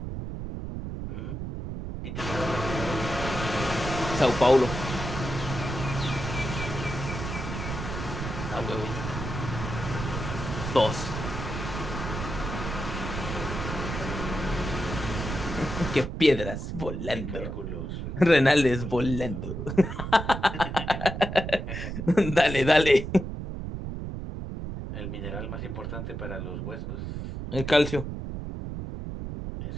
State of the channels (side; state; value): right; noise; rumble, 5 dB below the sound